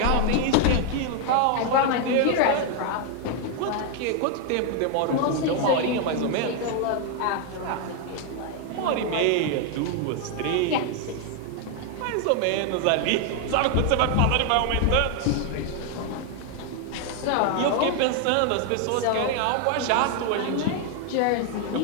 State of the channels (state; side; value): different; both; correlation 0.01